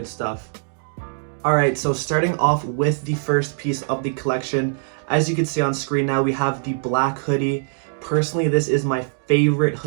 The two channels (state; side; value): silent; left; digital silence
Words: stuff. Alright, so starting off with the first piece of the collection, as you can see on screen now, we have the black hoodie. Personally, this is my favorite